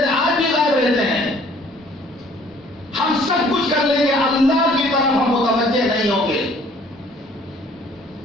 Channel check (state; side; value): normal; both; correlation 0.57